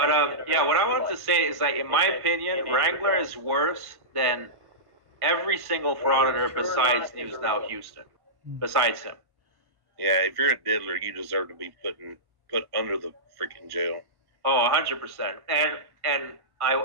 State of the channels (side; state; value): left; late; 1.1 ms